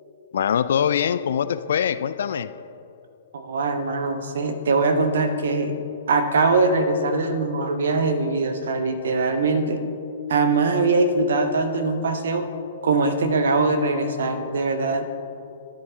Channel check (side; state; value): both; inverted; correlation -0.51